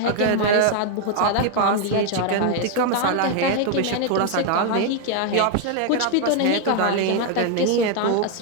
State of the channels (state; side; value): different; both; correlation 0.00